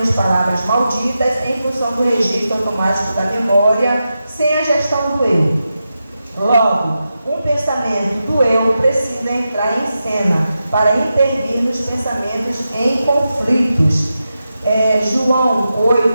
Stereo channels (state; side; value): inverted; both; correlation -0.90